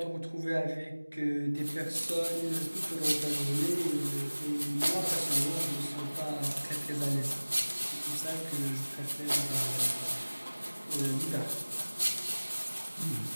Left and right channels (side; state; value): both; inverted; correlation -1.00